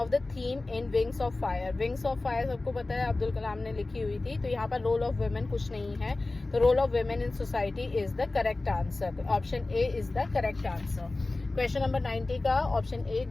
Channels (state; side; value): quieter; right; 3.1 dB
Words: the theme in wings of fire. Wings of fire सबको पता है अब्दुल कलाम ने लिखी हुई थी, तो यहाँ पर रोल ऑफ वुमेन कुछ नहीं है, तो role of women in society is the correct answer. Option A is the correct answer. Question number 90 का ऑप्शन ए